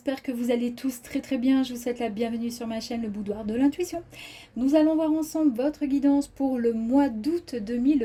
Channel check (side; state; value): both; identical; correlation 1.00